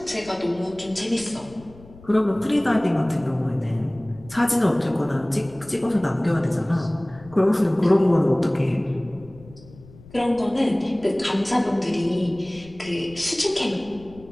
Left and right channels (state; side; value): noise; left; rumble, 21 dB below the sound